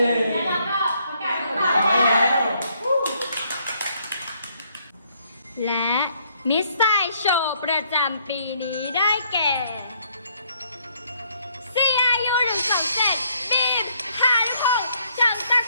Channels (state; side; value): inverted; both; correlation -0.69